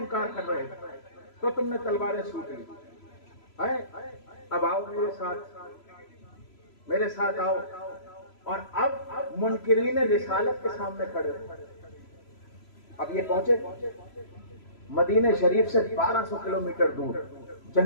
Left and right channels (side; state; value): right; late; 3.0 ms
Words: کر رہے تھے، تو تم نے تلواریں سوٹ لی۔ اب آؤ میرے ساتھ آؤ، اور اب منکرین رسالت کے سامنے کھڑے ہو۔ اب یہ پہنچے مدینہ شریف سے 1200 کلومیٹر دور